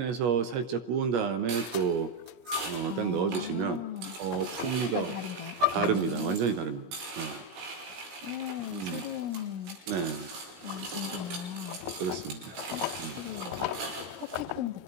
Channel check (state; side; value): late; left; 17 ms